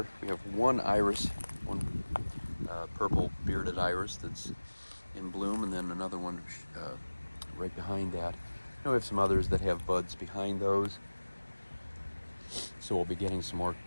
we have one iris, one purple bearded iris that's in bloom, and then another one right behind that. And we have some others that have buds behind those, so we'll be getting some more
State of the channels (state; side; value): inverted; both; correlation -1.00